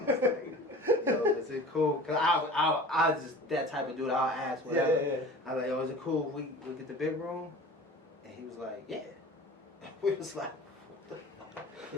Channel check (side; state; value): both; normal; correlation 0.40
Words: was like, yo, is it cool? Because I was just that type of dude. I'll ask whatever. Yeah. I was like, yo, is it cool if we get the big room? And he was like, yeah. We was like,